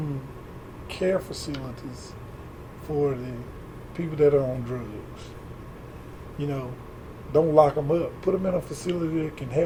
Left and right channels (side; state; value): both; identical; correlation 1.00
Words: care facilities for the people that are on drugs. You know, don't lock them up. Put them in a facility that can